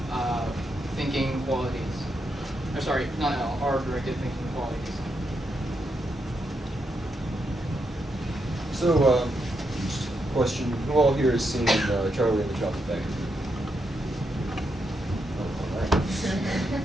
thinking qualities. Or sorry, not L, R-directed thinking qualities. So, just a question. Who all here has seen Charlie and the Chocolate Factory? Oh, all right.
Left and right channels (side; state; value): both; normal; correlation 0.82